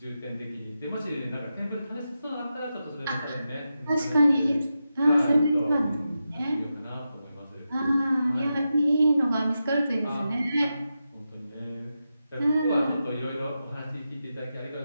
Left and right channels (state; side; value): inverted; both; correlation -0.89